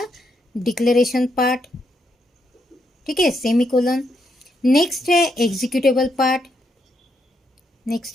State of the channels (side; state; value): both; normal; correlation 0.78